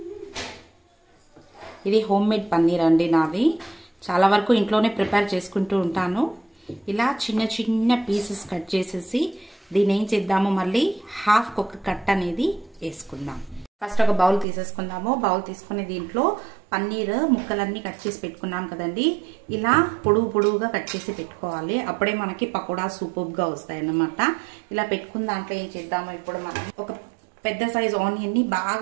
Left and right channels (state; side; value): drops out; left; at 14.5 s